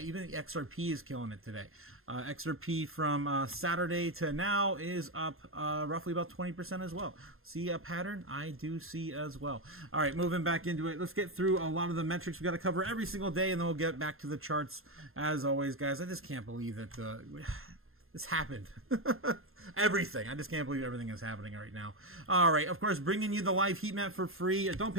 even XRP is killing it today. XRP from Saturday to now is up roughly about 20% as well. See a pattern? I do see as well. All right, moving back into it. Let's get through a lot of the metrics we got to cover every single day, and then we'll get back to the charts as always, guys. I just can't believe that this happened. Everything. I just can't believe everything is happening right now. All right. Of course, bringing you the live heat map for free. Don't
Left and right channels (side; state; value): left; late; 0.61 ms